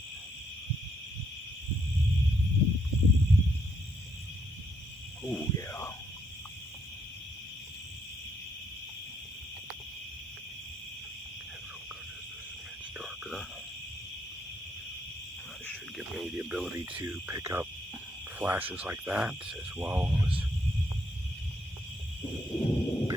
Oh yeah. That should give me the ability to pick up flashes like that, as well as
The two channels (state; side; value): normal; both; correlation 0.74